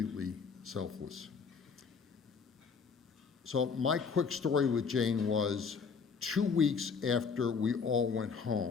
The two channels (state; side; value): quieter; right; 5.6 dB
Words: selfless. So my quick story with Jane was 2 weeks after we all went